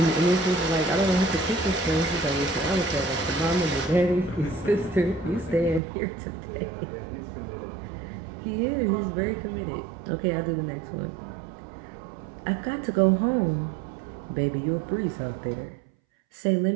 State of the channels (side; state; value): left; drops out; at 5.8 s